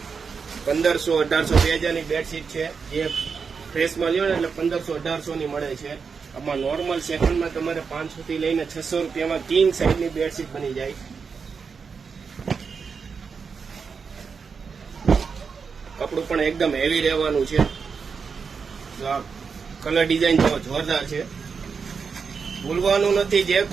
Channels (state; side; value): quieter; left; 5.6 dB